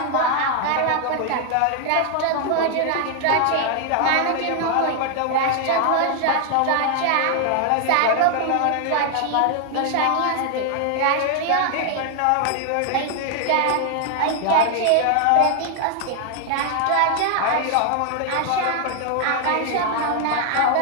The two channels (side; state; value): both; different; correlation 0.00